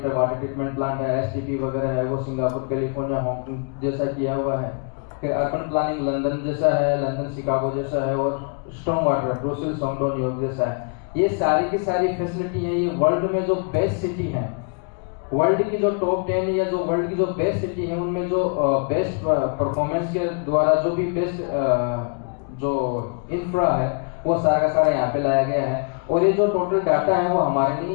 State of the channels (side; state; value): right; quieter; 37.8 dB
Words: वाटर ट्रीटमेंट प्लांट है, एसटीपी वगैरह है, वो सिंगापुर, कैलिफोर्निया, हांगकांग जैसा किया हुआ है। फिर अर्बन प्लानिंग लंदन जैसा है, लंदन शिकागो जैसा है, और स्ट्रॉन्ग वाटर ब्रुसेल, सोंगडो, न्यूयॉर्क जैसा है। ये सारी की सारी फैसिलिटी है। ये वर्ल्ड में जो बेस्ट सिटी है, वर्ल्ड की जो टॉप 10 या जो वर्ल्ड की जो बेस्ट सिटी है, उनमें जो बेस्ट परफॉर्मेंस के द्वारा जो भी बेस्ट जो इंफ्रा है वो सारा का सारा यहाँ पे लाया गया है। और ये जो टोटल डाटा है वो हमारे नहीं